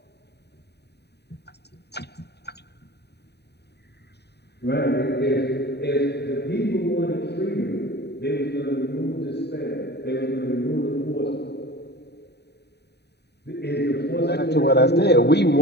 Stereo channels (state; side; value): late; right; 0.48 ms